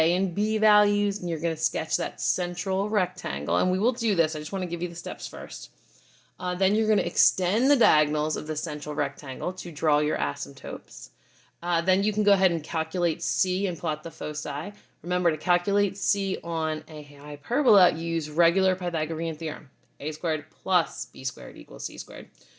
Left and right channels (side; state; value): both; identical; correlation 1.00